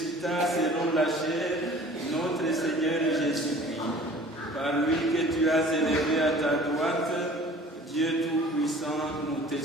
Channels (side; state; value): both; normal; correlation 0.47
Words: selon la chair notre Seigneur Jésus-Christ, par lui que tu as élevé à ta droite, Dieu Tout-Puissant, nous te